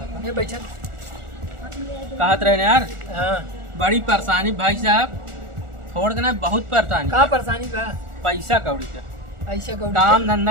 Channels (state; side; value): late; left; 1.4 ms